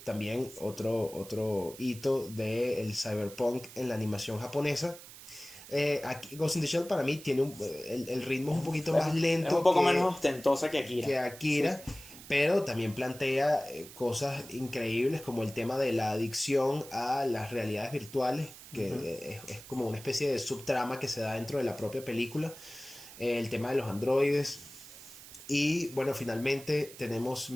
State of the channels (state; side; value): noise; right; hiss, 16 dB below the sound